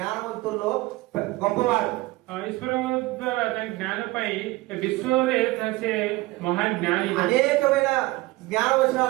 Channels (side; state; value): left; quieter; 20.2 dB